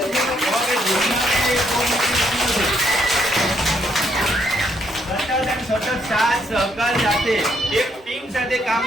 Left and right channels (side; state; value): both; normal; correlation 0.73